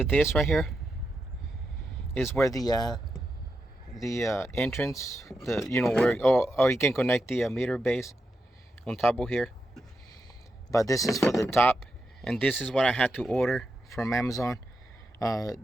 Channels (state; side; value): normal; both; correlation 0.86